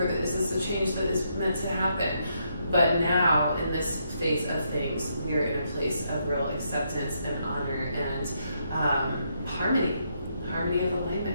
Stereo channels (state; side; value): inverted; both; correlation -0.77